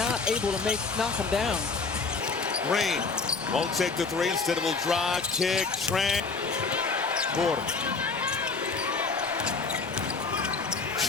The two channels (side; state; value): right; quieter; 4.5 dB